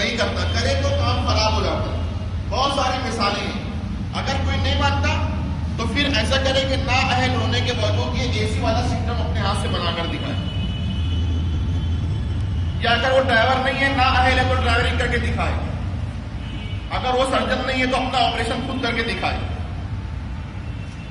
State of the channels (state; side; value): identical; both; correlation 1.00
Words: کرتا. کرے تو کام خراب ہو جاتا. بہت ساری مثالیں ہیں. اگر کوئی نہیں مانتا تو پھر ایسا کرے کہ نا اہل ہونے کے باوجود یہ اے سی والا سسٹم اپنے ہاتھ سے بنا کر دکھائے. یا اگر وہ ڈرائیور نہیں ہے، نا اہل ہے، تو ڈرائیورنگ کر کے دکھائے. اگر وہ سرجن نہیں ہے تو اپنا آپریشن خود کر کے دکھائے.